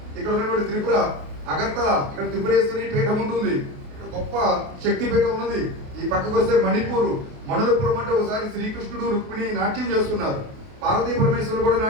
ఇక్కడ ఉన్నటువంటి త్రిపుర అగర్తల, ఇక్కడ త్రిపురేశ్వరి పీఠం ఉంటుంది, ఇక్కడ గొప్ప శక్తి పీఠం ఉన్నది. ఈ పక్కకు వస్తే మణిపూర్, మణులపురం అంటే ఒకసారి శ్రీకృష్ణుడు రుక్మిణి నాట్యం చేస్తున్నారు, పార్వతీ పరమేశ్వరులు కూడా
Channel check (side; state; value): left; late; 28 ms